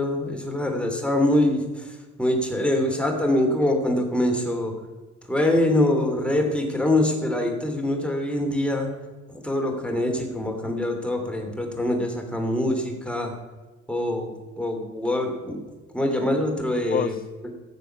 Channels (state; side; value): normal; both; correlation 0.64